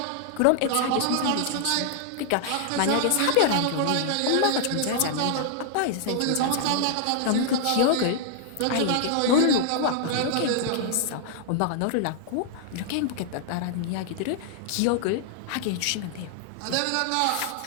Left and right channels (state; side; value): different; both; correlation 0.00